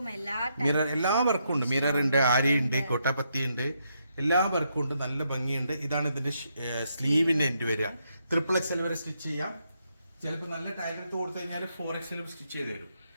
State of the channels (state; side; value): inverted; both; correlation -0.79